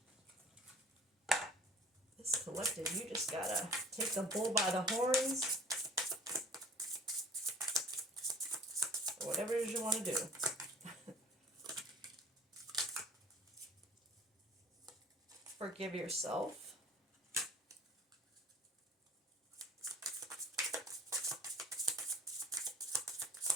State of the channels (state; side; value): normal; both; correlation 0.51